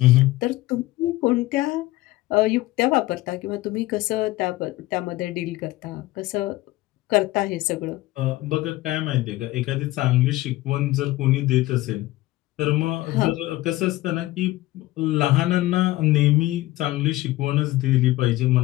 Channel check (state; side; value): quieter; right; 17.8 dB